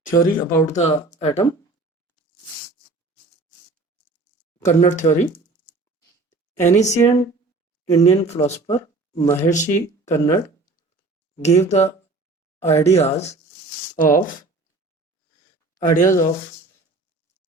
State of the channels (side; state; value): left; quieter; 3.3 dB